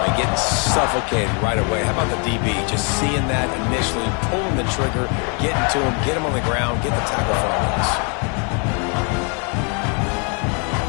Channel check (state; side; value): quieter; right; 36.8 dB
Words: Getting suffocated right away. How about the DB? Just seeing that initially, pulling the trigger, getting to him, get him on the ground, get the tackle for us.